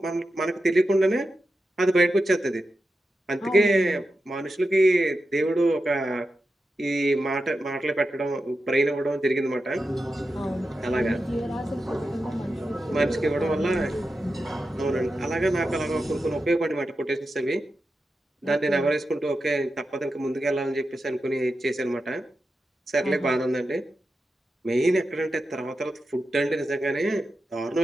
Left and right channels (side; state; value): both; normal; correlation 0.90